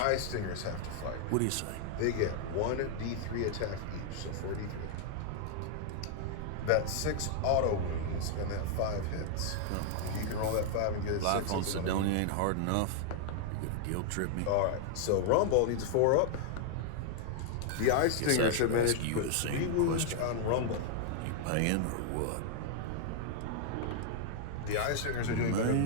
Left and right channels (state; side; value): different; both; correlation 0.00